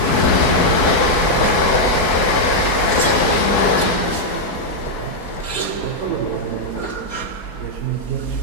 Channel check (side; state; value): right; late; 4.7 ms